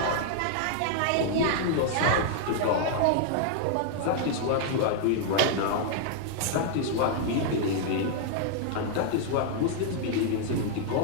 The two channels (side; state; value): both; different; correlation -0.01